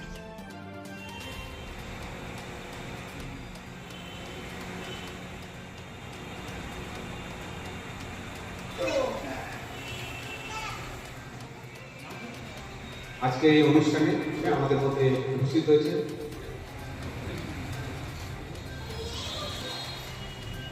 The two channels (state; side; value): identical; both; correlation 1.00